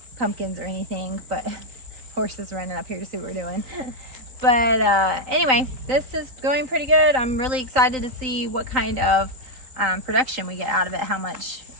pumpkins or anything, but horses running up here to see what we're doing. But anyway, this is going pretty good. I'm really excited to see what kind of production we get out of it, how much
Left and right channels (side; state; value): left; late; 3.9 ms